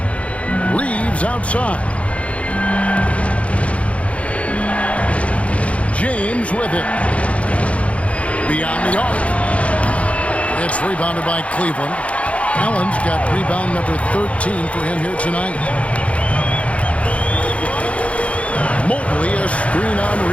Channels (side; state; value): right; late; 0.064 ms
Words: Reeves outside. James with it. Beyond the arc. It's rebounded by Cleveland. Allen's got rebound number 13 for him here tonight. Mobley, a screen on